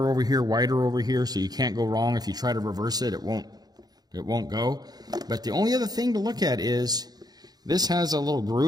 over here, wider over here, so you can't go wrong. If you try to reverse it, it won't go. But the only other thing to look at is this has a little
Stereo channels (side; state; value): left; late; 0.19 ms